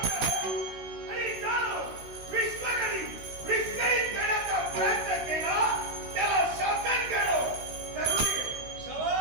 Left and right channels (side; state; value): left; late; 16 ms